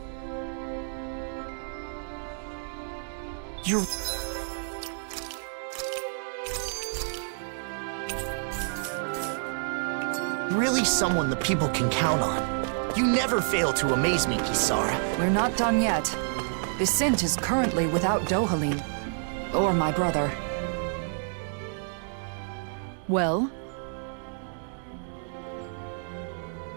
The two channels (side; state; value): left; silent; digital silence